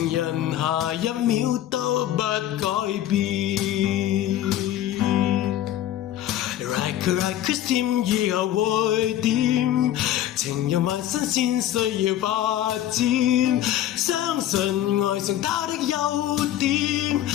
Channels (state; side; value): quieter; right; 12.3 dB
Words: 人下一秒都不改變。Like Christine 以後會點？情人萬新鮮需要發展，相信愛上他的優點，